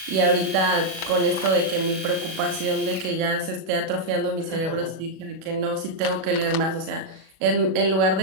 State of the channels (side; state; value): left; late; 37 ms